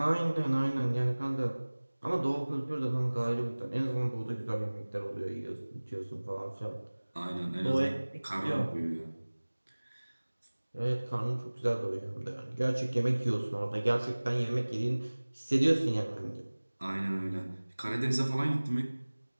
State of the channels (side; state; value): both; inverted; correlation -1.00